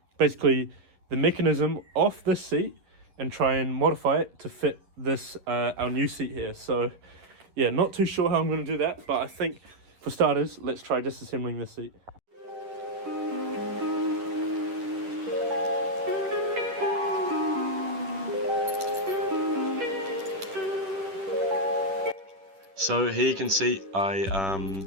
basically the mechanism off this seat and try and modify it to fit this, our new seat here. So yeah, not too sure how I'm gonna do that, but I think for starters, let's try disassembling this seat. So here you can see I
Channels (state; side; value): late; left; 10 ms